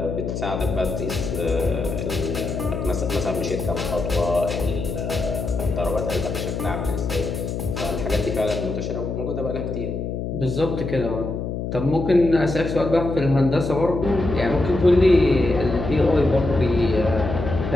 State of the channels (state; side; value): noise; left; hum, 4 dB below the sound